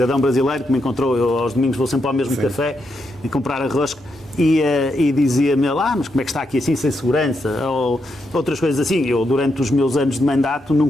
brasileiro que me encontrou, eu aos domingos vou sempre ao mesmo café e comprar arroz, e dizia-me, mas como é que está aqui assim, sem segurança? Ou outras coisas assim. Eu, durante os meus anos de mandato,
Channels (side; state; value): right; noise; hum, 29 dB below the sound